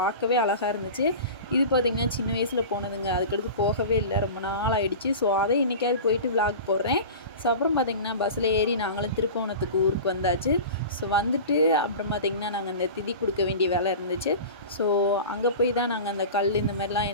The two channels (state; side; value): inverted; both; correlation -0.33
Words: பார்க்கவே அழகாக இருந்துச்சு. இது பார்த்திங்கன்னா சின்ன வயசில் போனதுங்க. அதுக்கடுத்து போகவே இல்லை, ரொம்ப நாள் ஆகிடுச்சு. ஸோ அதை இன்றைக்காவது போயிட்டு விளாக் போடுறேன். ஸோ அப்புறம் பார்த்திங்கன்னா பஸ்ஸில் ஏறி நாங்களும் திருப்பவனத்துக்கு ஊருக்கு வந்தாச்சு. ஸோ வந்துட்டு அப்புறம் பார்த்திங்கன்னா நாங்கள் அந்த திதி கொடுக்க வேண்டிய வேலை இருந்துச்சு. ஸோ அங்கே போய் தான் நாங்கள் அந்த கல் இந்த மாதிரிலாம்